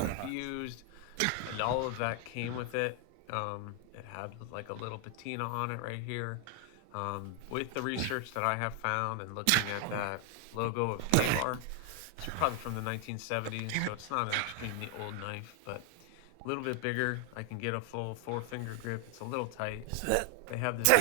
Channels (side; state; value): both; different; correlation 0.00